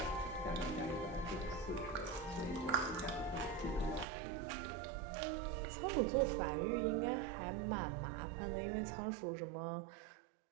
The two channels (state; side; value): drops out; left; at 4.0 s